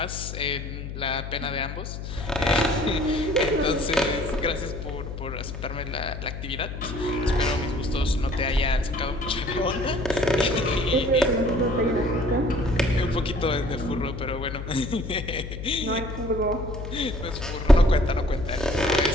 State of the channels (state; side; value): noise; left; hum, 8 dB below the sound